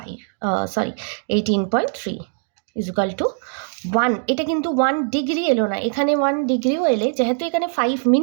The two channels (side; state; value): left; silent; 57 dB below the other